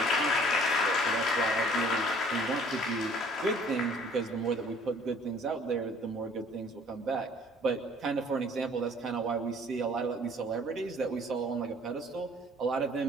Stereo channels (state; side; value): normal; both; correlation 0.55